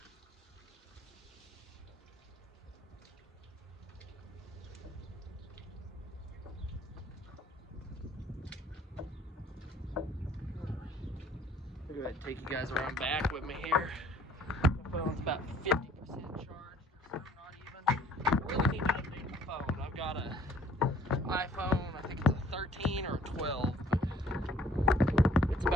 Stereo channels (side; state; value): both; normal; correlation 0.57